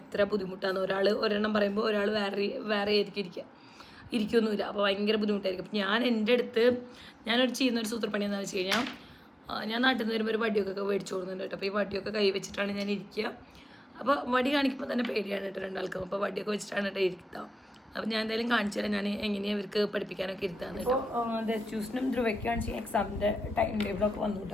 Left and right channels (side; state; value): both; normal; correlation 0.94